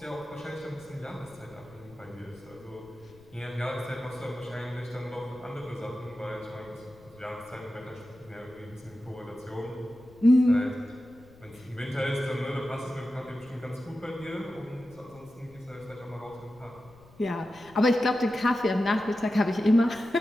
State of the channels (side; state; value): left; noise; rumble, 24 dB below the sound